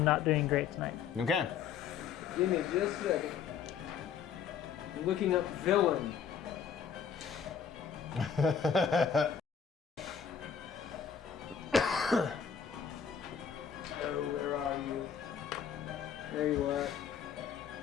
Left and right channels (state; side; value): quieter; right; 7.4 dB